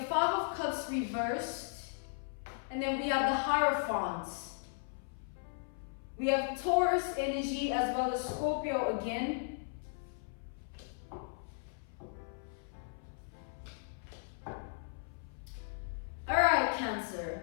Five of Cups reversed. And then we have the Hierophant. We have Taurus energy as well as Scorpio again. Alright,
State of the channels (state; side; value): silent; right; 54 dB below the other